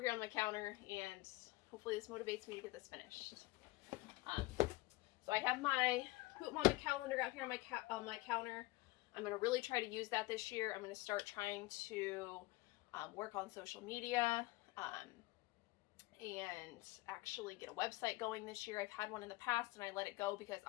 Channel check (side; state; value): right; quieter; 21.0 dB